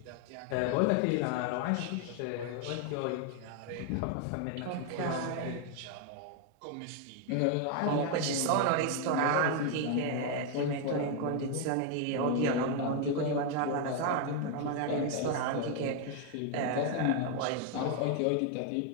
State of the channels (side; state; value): both; different; correlation 0.01